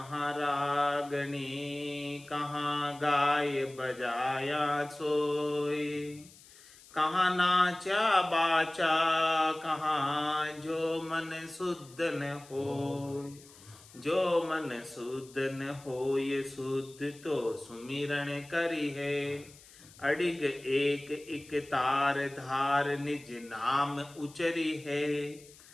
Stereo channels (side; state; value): left; noise; hiss, 22 dB below the sound